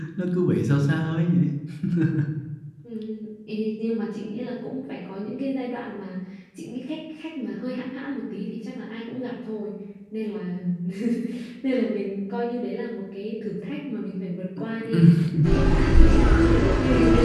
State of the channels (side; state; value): both; identical; correlation 1.00